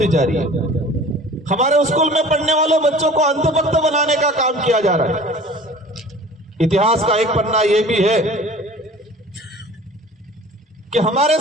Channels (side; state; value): both; normal; correlation 0.44